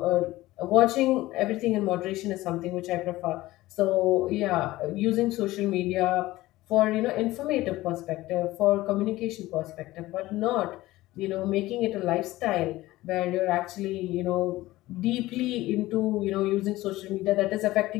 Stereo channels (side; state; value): right; quieter; 17.6 dB